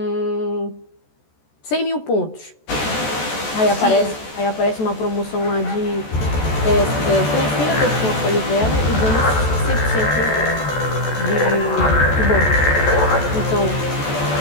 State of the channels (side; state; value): right; late; 14 ms